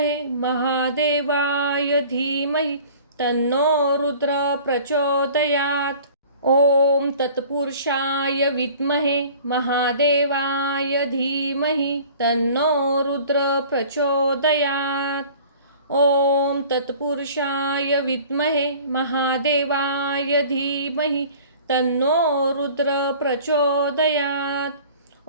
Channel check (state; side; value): inverted; both; correlation -0.46